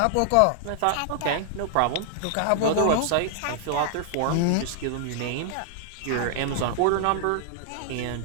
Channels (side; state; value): both; different; correlation 0.00